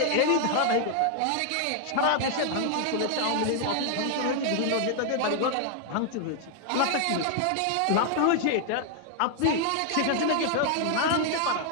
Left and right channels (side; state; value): both; different; correlation 0.00